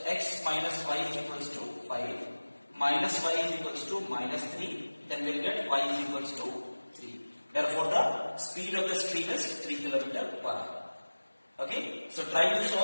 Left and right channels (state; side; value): inverted; both; correlation -1.00